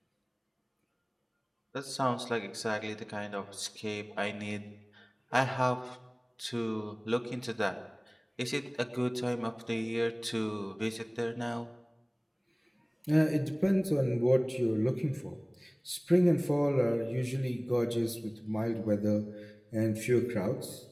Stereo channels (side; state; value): both; identical; correlation 1.00